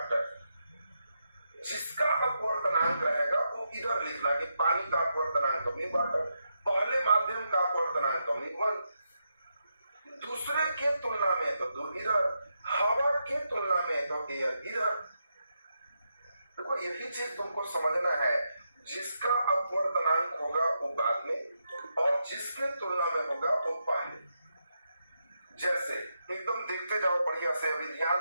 जिसका अपवर्तनांक रहेगा वो इधर लिखना कि पानी का अपवर्तनांक तो म्यू वाटर, पहले माध्यम का अपवर्तनांक तो म्यू 1, दूसरे के तुलना में तो दो इधर, हवा के तुलना में तो एयर इधर। देखो यही चीज तुमको समझना है, जिसका अपवर्तनांक होगा वो बाद में और जिसके तुलना में होगा वो पहले। जैसे एकदम देखते जाओ बढ़िया से, अभी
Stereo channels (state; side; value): inverted; both; correlation -0.84